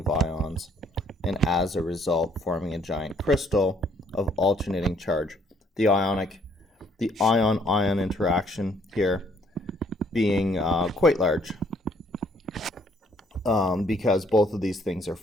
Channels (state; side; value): normal; both; correlation 0.65